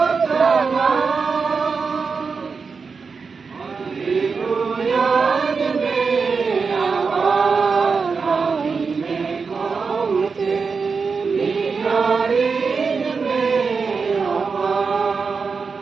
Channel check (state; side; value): quieter; left; 5.1 dB